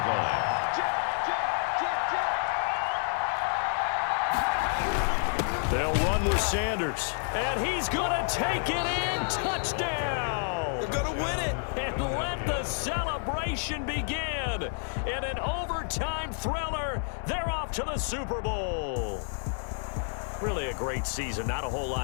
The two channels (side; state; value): right; silent; 58 dB below the other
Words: line. They'll run with Sanders. And he's going to take it in. Touchdown. They're going to win it. And let the celebration begin. In an overtime thriller, they're off to the Super Bowl. Really a great season. Not a whole